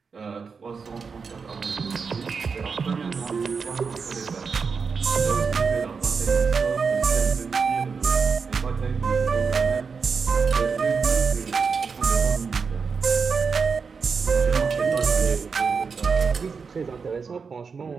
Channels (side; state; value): left; quieter; 5.4 dB